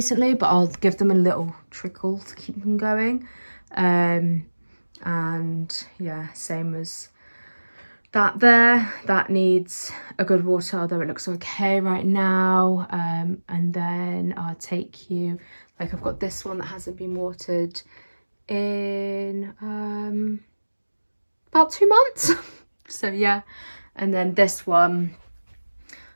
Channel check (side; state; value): both; inverted; correlation -1.00